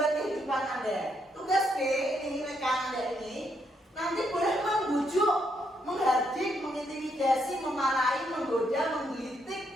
kehidupan Anda. Tugas B, ini rekan Anda ini, nanti boleh membujuk, menghardik, mengintimidasi, memarahi, menggoda,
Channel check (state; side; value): normal; both; correlation 0.76